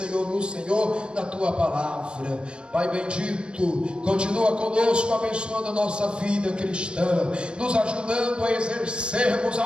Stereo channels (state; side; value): late; left; 0.056 ms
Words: no Senhor, na Tua palavra. Pai bendito, continua conosco, abençoando a nossa vida cristã, nos ajudando a exercermos a